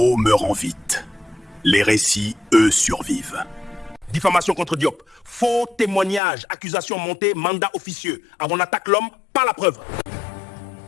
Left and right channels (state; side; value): drops out; right; at 6.2 s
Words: meurent en vite. Les récits, eux, survivent. Diffamation contre Diop. Faux témoignage, accusation montée, mandat officieux. Avant on attaque l'homme, pas la preuve.